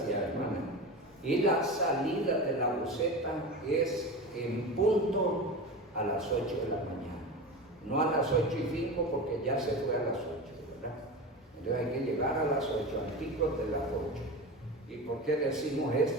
hermana. Y la salida de la buceta es en punto a las 8 de la mañana. No a las 8:05 porque ya se fue a las 8, ¿verdad? Entonces hay que llegar a las 8, al tico de las 8. ¿Y por qué decimos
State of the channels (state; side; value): normal; both; correlation 0.27